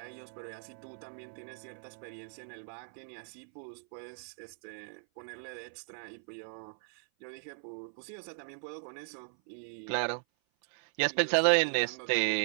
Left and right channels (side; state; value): left; silent; 53 dB below the other